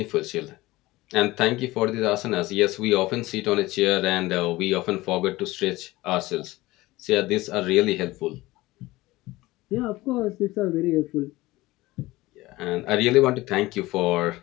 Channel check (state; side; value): quieter; right; 19.2 dB